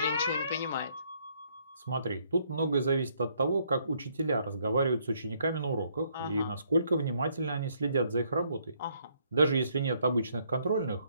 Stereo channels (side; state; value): both; inverted; correlation -0.69